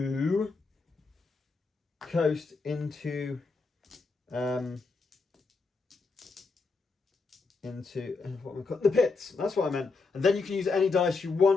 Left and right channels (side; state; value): right; quieter; 4.1 dB